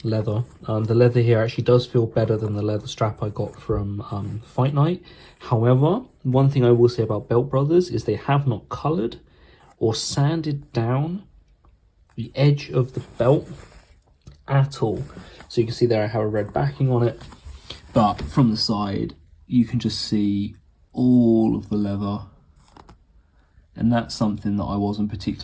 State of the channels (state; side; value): identical; both; correlation 1.00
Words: leather. The leather here actually does feel better than the leather strap I got from Fight Night. However, one thing I will say about Belt Brothers is they have not coloured or sanded down the edge of the belt at all. So you can see there I have a red backing on it, but from the side you can just see all of the leather, and that's something that I wasn't